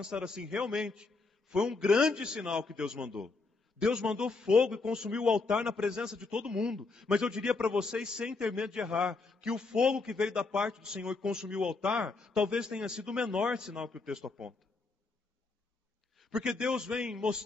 assim, realmente, foi um grande sinal que Deus mandou. Deus mandou fogo e consumiu o altar na presença de todo mundo. Mas eu diria para vocês, sem ter medo de errar, que o fogo que veio da parte do Senhor e consumiu o altar, talvez tenha sido o menor sinal que o texto aponta. Porque Deus vem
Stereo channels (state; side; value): quieter; right; 3.9 dB